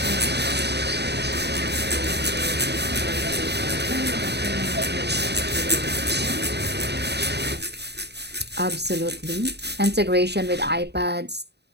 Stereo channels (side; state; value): left; late; 0.49 ms